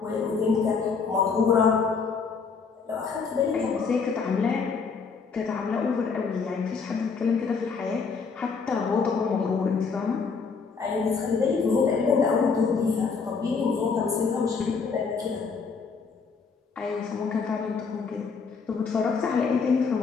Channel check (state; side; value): quieter; right; 5.3 dB